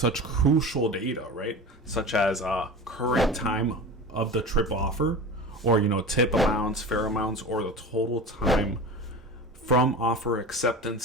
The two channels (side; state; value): both; normal; correlation 0.31